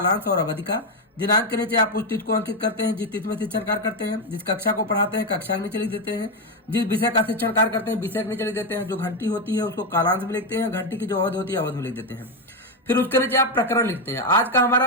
और अवधि का। दिनांक के नीचे आप उस तिथि को अंकित करते हैं जिस तिथि में शिक्षण कार्य करते हैं। जिस कक्षा को पढ़ाते हैं कक्षा के नीचे लिख देते हैं। जिस विषय का शिक्षण कार्य करते हैं विषय के नीचे लिख देते हैं। जो घंटी होती है उसको कालांश में लिखते हैं, घंटी की जो अवधि होती है अवधि में लिख देते हैं। फिर उसके नीचे आप प्रकरण लिखते हैं। आज का हमारा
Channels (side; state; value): both; normal; correlation 0.07